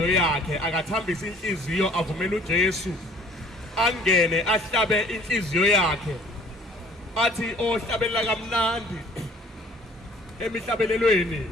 yakhe akathambisa inhliziyo avumela uJesu angene ahlabe inhliziyo yakhe athi ohlabelela kamnandi emihlabelelweni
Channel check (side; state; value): both; normal; correlation 0.54